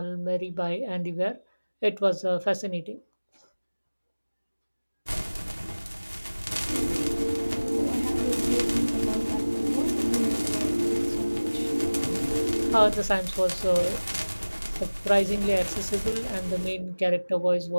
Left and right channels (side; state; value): both; inverted; correlation -1.00